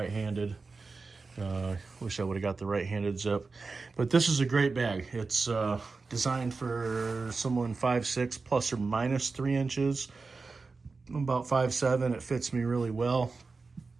Wish I would have got the right-handed zip. But this is a great bag. It's designed for someone 5'6", plus or minus 3 inches. I'm about 5'7". It fits me really well.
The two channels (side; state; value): left; quieter; 4.2 dB